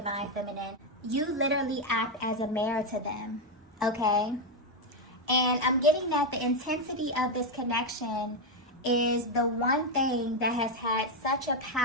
Feminine. you literally act as a mirror to them, okay? And I'm getting that the intensity of this connection is the one thing that has had such a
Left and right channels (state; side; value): normal; both; correlation 0.05